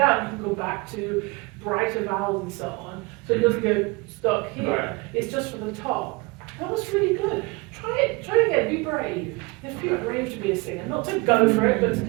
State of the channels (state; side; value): quieter; left; 26.3 dB